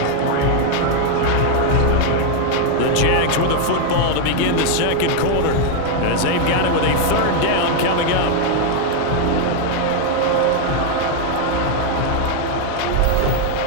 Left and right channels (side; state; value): both; different; correlation 0.01